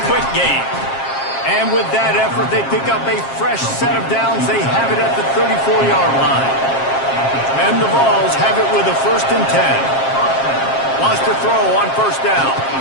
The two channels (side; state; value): right; late; 7.5 ms